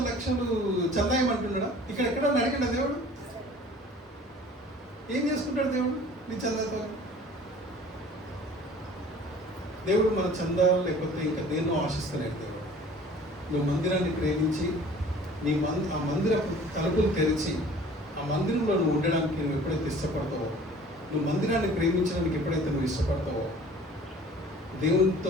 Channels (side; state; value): both; normal; correlation 0.48